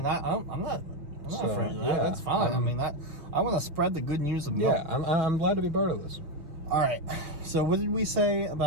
I'm not So, afraid of that. yeah, That's fine. I want to spread the good news of milk. Yeah, I'm glad to be part of this. All right. So what did we say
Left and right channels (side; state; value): left; late; 6.1 ms